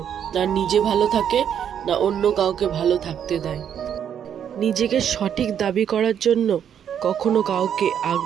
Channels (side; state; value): left; quieter; 8.8 dB